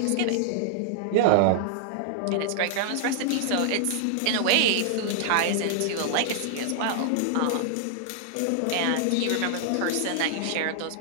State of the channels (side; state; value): both; different; correlation -0.01